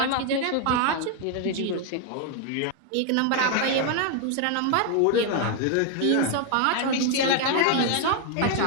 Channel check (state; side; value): different; both; correlation 0.00